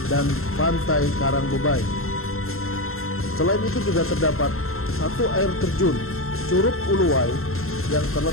dan Pantai Karang Bebai. Selain itu juga terdapat 1 air terjun Curug Uluwai yang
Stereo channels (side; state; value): right; late; 0.62 ms